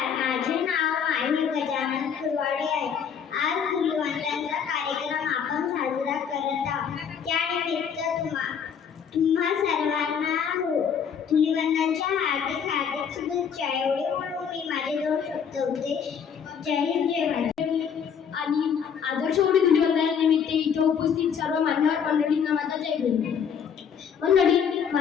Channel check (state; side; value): quieter; right; 7.3 dB